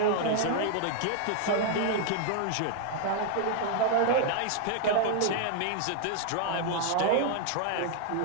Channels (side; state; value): both; different; correlation 0.00